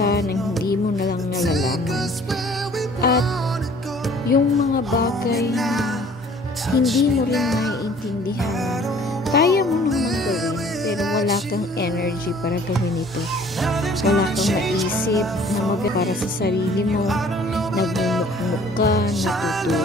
nang hindi mo na lang nalalaman. At yung mga bagay na hindi mo rin maiintindihan, kaya mo namang gawin, pero wala kang energy para gawin ito. Wala kang maisip na para sa sarili mo. Nagmumukmuk ka,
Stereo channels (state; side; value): normal; both; correlation 0.53